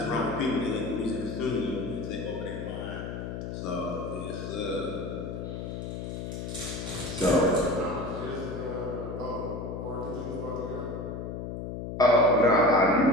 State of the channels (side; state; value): left; noise; hum, 6 dB below the sound